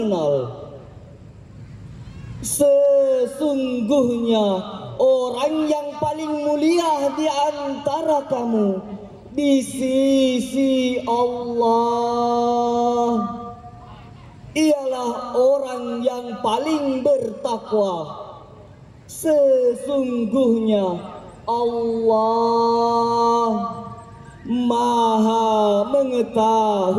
Sesungguhnya orang yang paling mulia di antara kamu di sisi Allah ialah orang yang paling bertakwa. Sesungguhnya Allah maha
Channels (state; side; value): identical; both; correlation 1.00